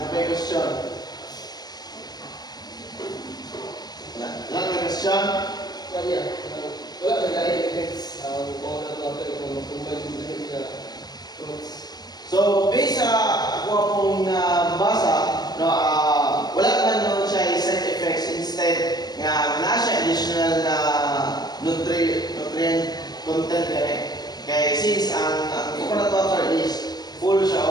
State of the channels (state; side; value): late; right; 0.19 ms